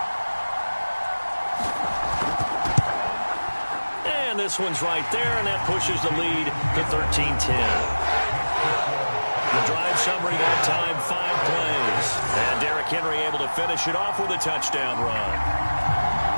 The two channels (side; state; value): both; inverted; correlation -1.00